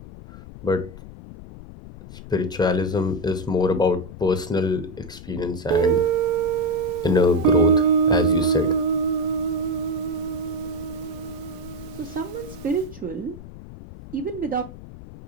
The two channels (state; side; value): noise; left; rumble, 15 dB below the sound